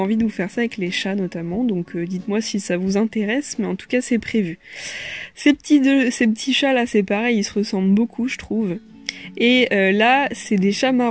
de vous faire ça avec les chats notamment, donc dites-moi si ça vous intéresse, mais en tout cas c'est prévu. Ces petits chats là c'est pareil, ils se ressemblent beaucoup je trouve. Et là c'est des chats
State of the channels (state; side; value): identical; both; correlation 1.00